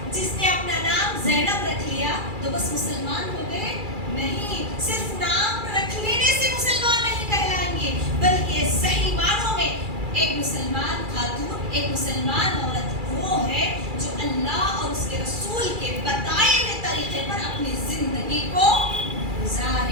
جس نے اپنا نام زینب رکھ لیا تو بس مسلمان ہو گئے. نہیں, صرف نام رکھ لینے سے مسلمان نہیں کہلائیں گے, بلکہ صحیح معنوں میں ایک مسلمان خاتون, ایک مسلمان عورت وہ ہے جو اللہ اور اس کے رسول کے بتائے ہوئے طریقے پر اپنی زندگی کو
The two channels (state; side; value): late; left; 2.3 ms